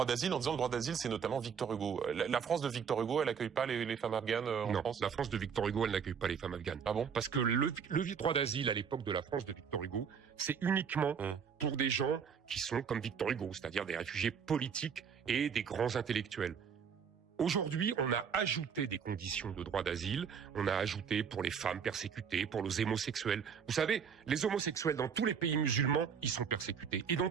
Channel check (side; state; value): left; quieter; 6.9 dB